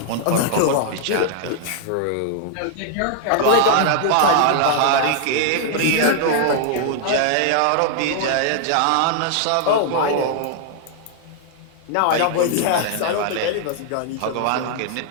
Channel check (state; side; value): different; both; correlation -0.01